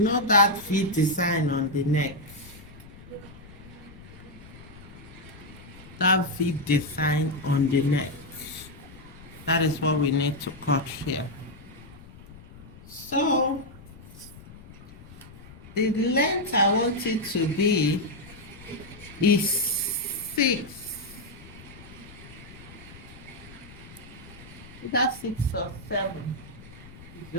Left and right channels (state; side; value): noise; left; rumble, 18 dB below the sound